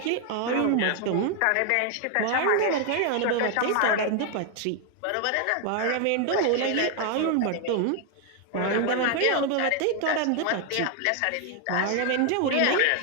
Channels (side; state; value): both; different; correlation 0.01